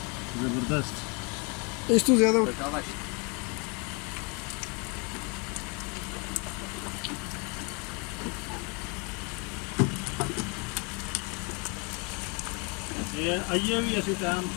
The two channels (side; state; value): right; quieter; 31.1 dB